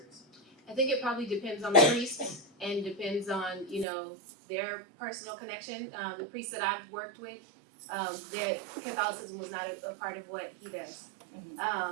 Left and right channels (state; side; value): drops out; left; at 3.9 s